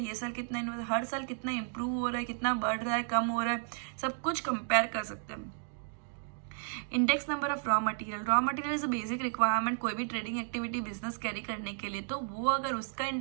साल कितना इन्वेस्ट, हर साल कितना इंप्रूव हो रहा है, कितना बढ़ रहा है, कम हो रहा है, सब कुछ कंपेयर कर सकते हैं। Index number of raw material. Raw material is a basic requirement कोई भी ट्रेडिंग एक्टिविटी बिजनेस कैरी करने के लिए, तो वो अगर उसका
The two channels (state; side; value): silent; left; digital silence